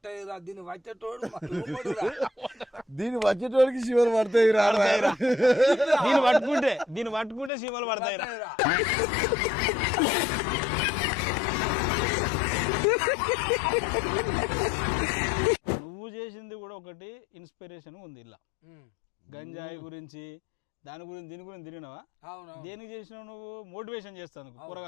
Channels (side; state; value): right; drops out; at 7.5 s